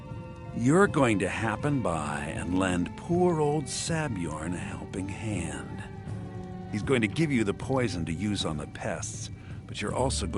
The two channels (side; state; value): both; identical; correlation 1.00